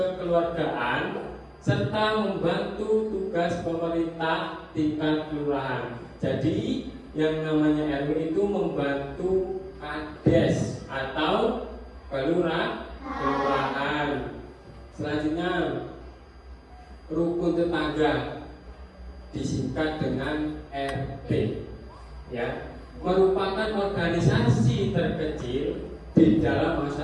serta membantu tugas pemerintah tingkat kelurahan. Jadi yang namanya RW itu membantu kades atau kelurahan. Selanjutnya, rukun tetangga disingkat dengan RT, ya, merupakan organisasi terkecil di dalam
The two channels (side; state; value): both; identical; correlation 1.00